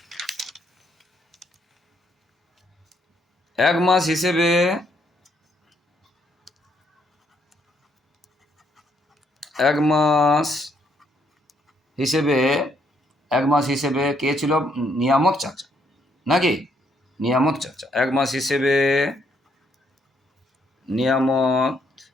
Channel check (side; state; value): both; normal; correlation 0.72